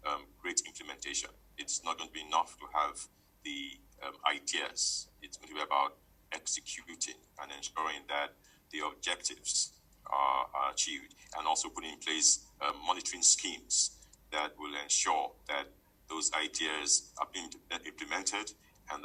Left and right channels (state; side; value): identical; both; correlation 1.00